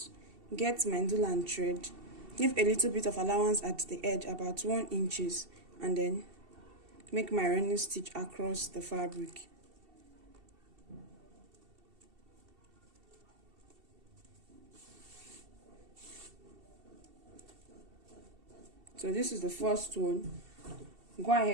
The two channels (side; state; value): left; late; 2.7 ms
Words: get my needle and thread, leave a little bit of allowance at the edge, about 1 inches, and then make my running stitch across the fabric. So this is the first one. Go